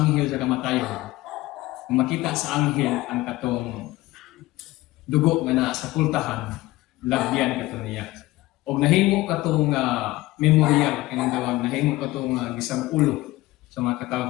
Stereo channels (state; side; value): quieter; right; 18.5 dB